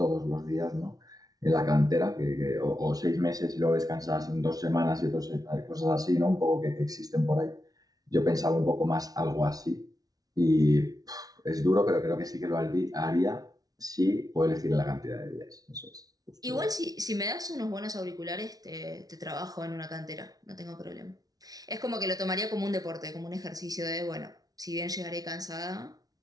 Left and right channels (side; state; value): left; late; 0.18 ms